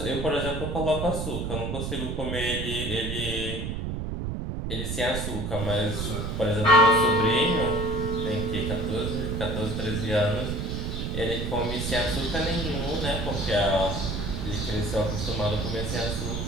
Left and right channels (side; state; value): right; noise; rumble, 3 dB below the sound